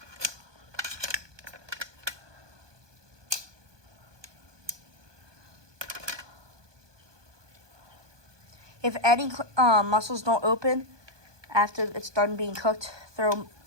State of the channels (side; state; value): left; late; 1.2 ms